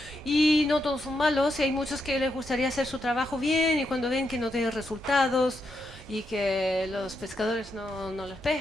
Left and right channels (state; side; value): normal; both; correlation 0.82